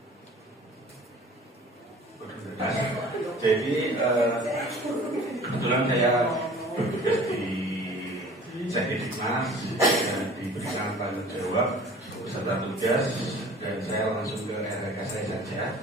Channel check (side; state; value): both; normal; correlation 0.46